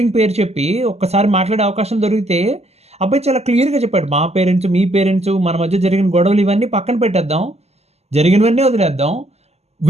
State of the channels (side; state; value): left; late; 0.30 ms